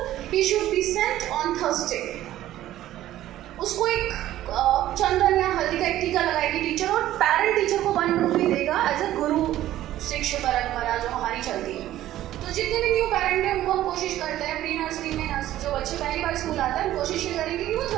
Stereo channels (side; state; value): left; quieter; 13.8 dB